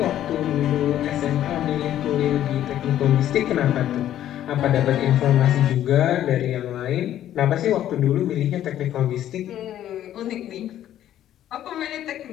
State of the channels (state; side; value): quieter; right; 11.8 dB